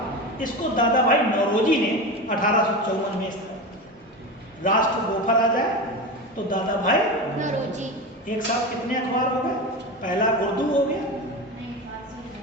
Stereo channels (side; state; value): both; normal; correlation 0.24